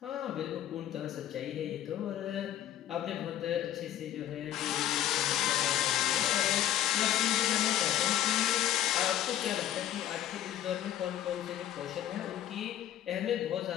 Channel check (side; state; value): right; quieter; 12.1 dB